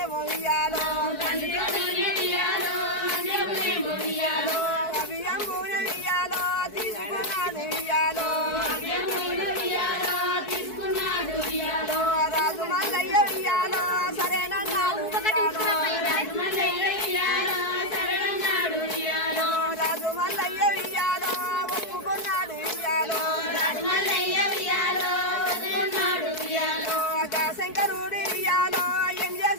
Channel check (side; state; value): right; late; 4.6 ms